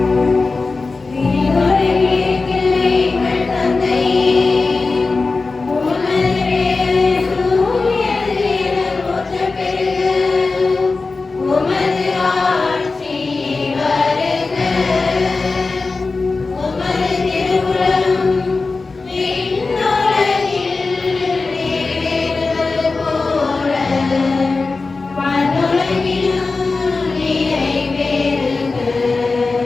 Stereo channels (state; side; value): quieter; right; 3.9 dB